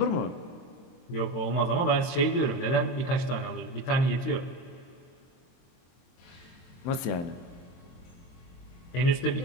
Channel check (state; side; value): late; right; 23 ms